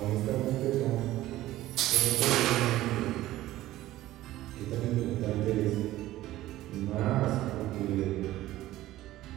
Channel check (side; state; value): left; quieter; 15.4 dB